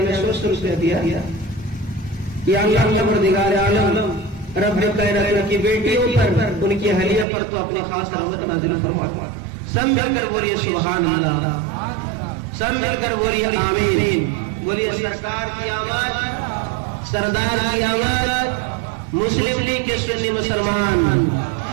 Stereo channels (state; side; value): drops out; left; at 7.2 s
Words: 100 روپیہ دیا. یا اللہ پروردگار عالم رب کائنات کی بیٹیوں پر ان کی حلیہ پر تو اپنے خاص رحمت نازل فرما. سب مل کر بولیے سبحان اللہ, سب مل کر بولیے آمین. بولیے سرکار کی آواز, سردار کی آواز, مسلم لیگ کے سنی مسلمان.